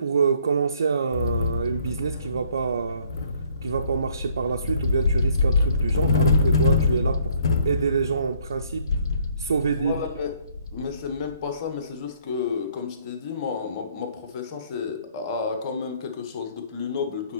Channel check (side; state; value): both; inverted; correlation -0.63